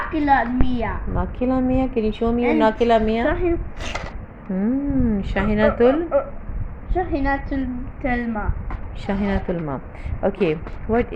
Mia. Nakila Mia. Can you show me your Nakila Mia? Shahinatul. Shahinatul Telma. Shahinatul Ma. Okay, what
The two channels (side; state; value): both; identical; correlation 1.00